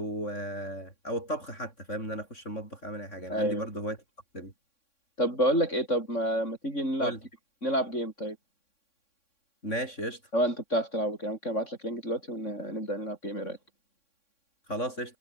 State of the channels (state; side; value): late; right; 3.6 ms